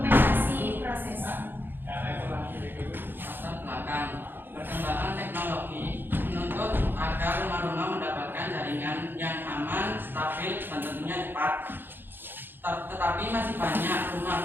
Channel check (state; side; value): late; left; 0.098 ms